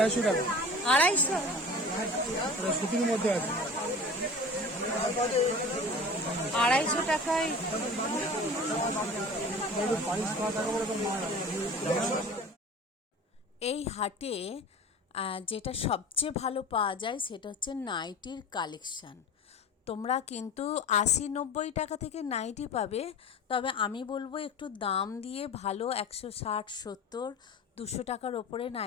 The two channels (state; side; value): normal; both; correlation 0.37